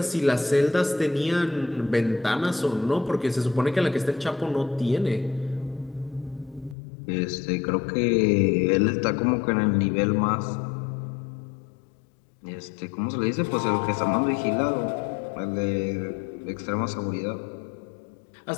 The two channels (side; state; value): right; drops out; at 6.8 s